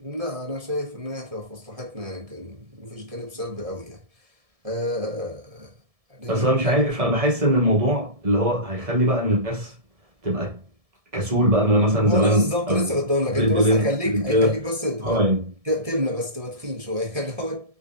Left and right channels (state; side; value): late; left; 1.7 ms